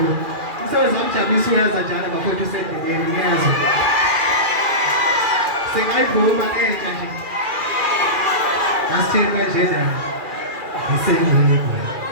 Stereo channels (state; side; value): late; left; 2.4 ms